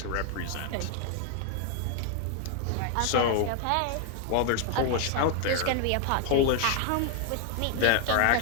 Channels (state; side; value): different; both; correlation 0.00